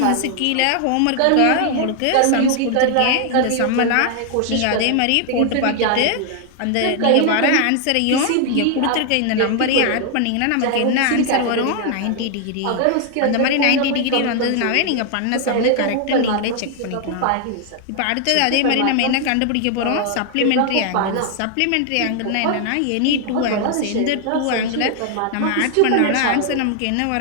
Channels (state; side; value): different; both; correlation 0.00